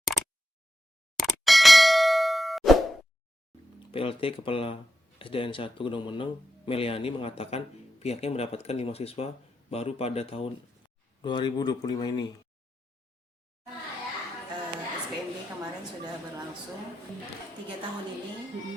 PLT Kepala SDN 1 Gunung Meneng, Meliani, mengatakan pihaknya mendapatkan 5 siswa baru pada tahun 2025 ini. SPMB kemarin sudah berlangsung 3 tahun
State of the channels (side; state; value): both; normal; correlation 0.88